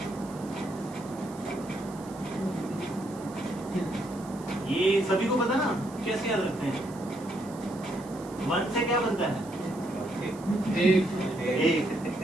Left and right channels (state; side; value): noise; right; hiss, 21 dB below the sound